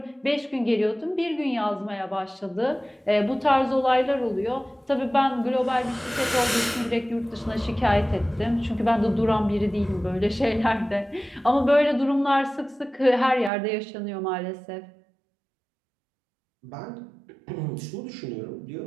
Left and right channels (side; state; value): left; drops out; at 13.5 s